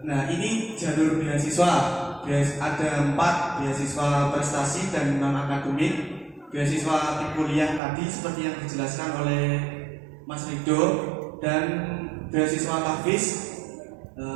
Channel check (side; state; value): left; drops out; at 7.8 s